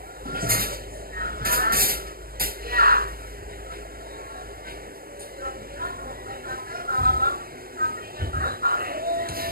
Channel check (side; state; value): left; late; 0.43 ms